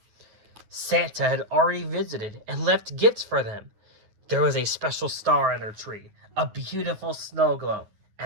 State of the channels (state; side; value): late; left; 9.5 ms